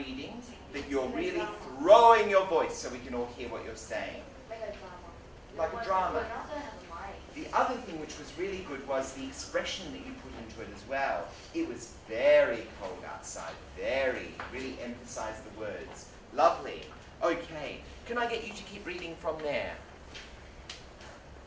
that you're really throwing your voice so we can all hear what you're saying. Like a drama. The other thing which was really good was the expression that you put into it as well. It was very cold outside, really emphasized the words. Lovely. Okay, can I get you to keep reading from there?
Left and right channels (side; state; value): both; identical; correlation 1.00